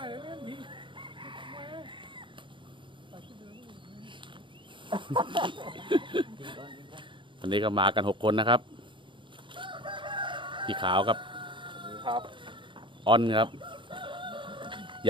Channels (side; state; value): left; late; 0.24 ms